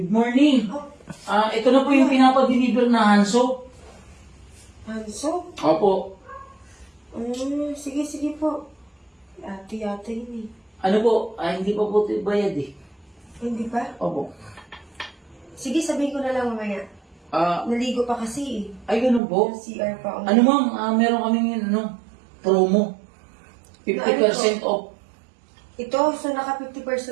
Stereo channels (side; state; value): left; drops out; at 19.2 s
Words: morning! Oh, Ito na po yung pinapa-deliver na handsoap. Hanso? Opo. Sige po. Ate yata yun eh. Ano po? Hindi pa po bayad eh. Hindi pa? Opo. Sige, sabihin ko na lang mamaya. Naligo pa kasi eh. Ay, ganun po. CR pa ako. Ano ma'am, meron kaming promo. 50% off. Ito, so naka